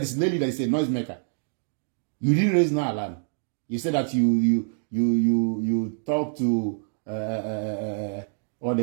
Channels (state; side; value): silent; left; digital silence